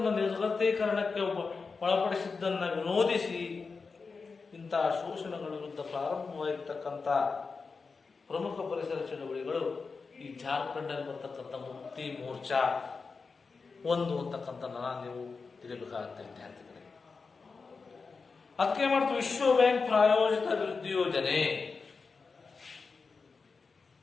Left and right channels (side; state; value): right; quieter; 4.6 dB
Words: ನಿರ್ಗತೀಕರಣಕ್ಕೆ ಒಳಪಡಿಸಿದ್ದನ್ನು ವಿರೋಧಿಸಿ ಇಂತಹ ಶೋಷಣೆಗಳ ವಿರುದ್ಧ ಪ್ರಾರಂಭವಾಗಿರ್ತಕ್ಕಂಥ ಪ್ರಮುಖ ಪರಿಸರ ಚಳವಳಿಗಳು ಈ ಜಾರ್ಖಂಡಲ್ಲಿ ಬರ್ತಕ್ಕಂಥ ಮುಕ್ತಿ ಮೋರ್ಚಾ ಒಂದು ಅಂತಕ್ಕಂಥ ನೀವು ತಿಳಿಯಬೇಕಾಗುತ್ತೆ ವಿದ್ಯಾರ್ಥಿಗಳೇ. ಅದಕ್ಕೆ ಮಾಡ್ತು ವಿಶ್ವ ಬ್ಯಾಂಕ್ ಪ್ರಾಯೋಜಿತ ಅಭಿವೃದ್ಧಿ ಯೋಜನೆ.